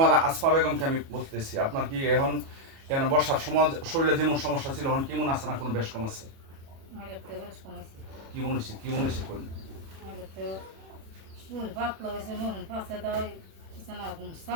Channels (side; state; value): left; late; 37 ms